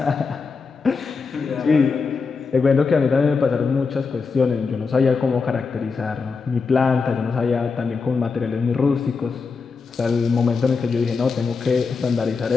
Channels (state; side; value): quieter; right; 4.8 dB